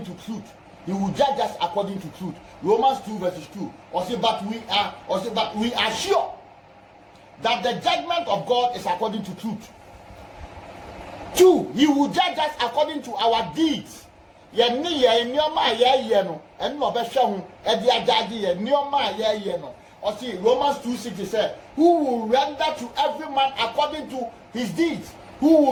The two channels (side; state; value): both; identical; correlation 1.00